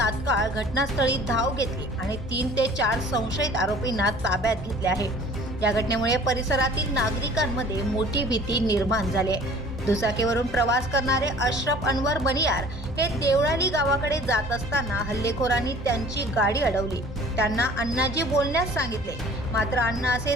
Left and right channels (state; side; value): normal; both; correlation 0.49